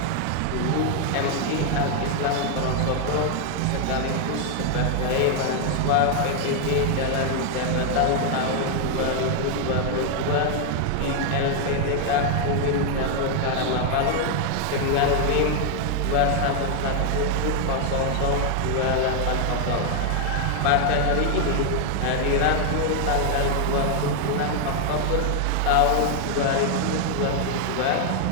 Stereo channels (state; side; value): different; both; correlation 0.00